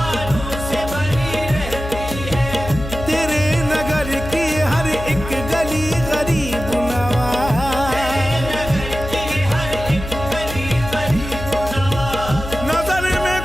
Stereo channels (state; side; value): noise; left; hum, 8 dB below the sound